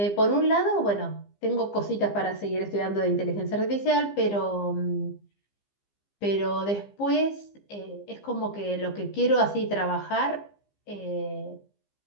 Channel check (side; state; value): right; late; 15 ms